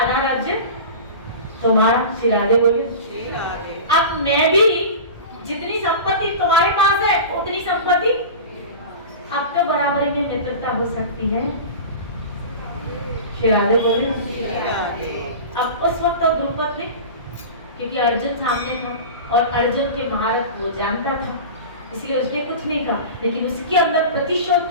राज्य तुम्हारा। श्री राधे बोलिए। अब मैं भी जितनी संपत्ति तुम्हारे पास है उतनी संपत्ति अब तो बराबरी में मित्रता हो सकती है। श्री राधे बोलिए। अब उस वक्त तो द्रुपद ने, क्योंकि अर्जुन सामने था और अर्जुन के महारथ वो जानता था, इसलिए उसने कुछ नहीं कहा, लेकिन उसके अंदर प्रतिशोध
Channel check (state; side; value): inverted; both; correlation -0.31